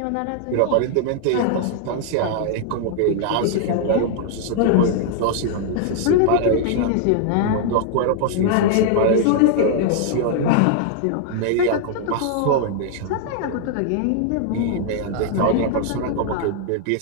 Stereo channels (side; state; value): both; different; correlation 0.00